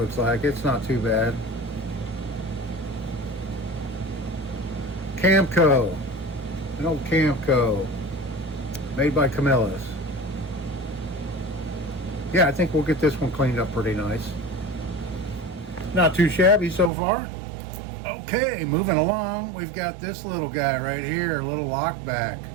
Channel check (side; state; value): left; drops out; at 16.9 s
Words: like. It's not too bad. Camco. An old Camco. Made by Camillus. Yeah, I think we'll get this one cleaned up pretty nice. Not too shabby so far. Okay, moving along, we've got this little guy right here, a little lockback.